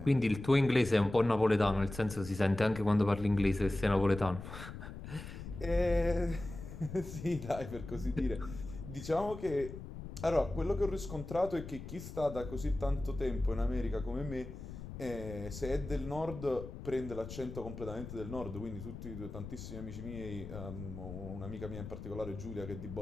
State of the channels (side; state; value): left; noise; rumble, 10 dB below the sound